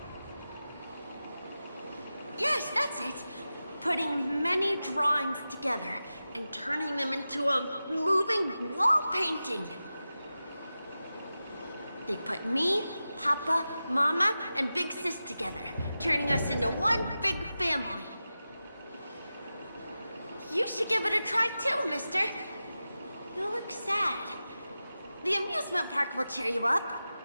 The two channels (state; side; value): inverted; both; correlation -0.93